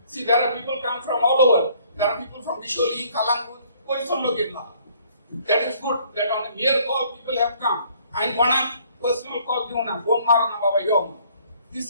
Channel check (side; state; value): both; inverted; correlation -0.60